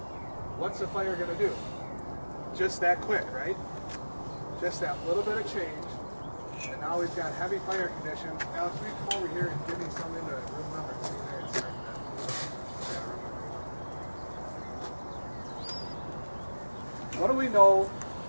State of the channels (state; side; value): inverted; both; correlation -1.00